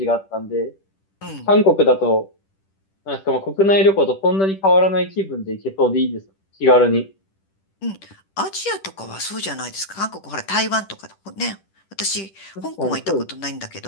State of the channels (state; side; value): late; right; 10 ms